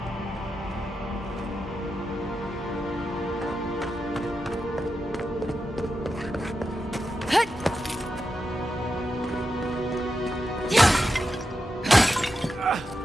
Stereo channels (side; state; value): both; normal; correlation 0.88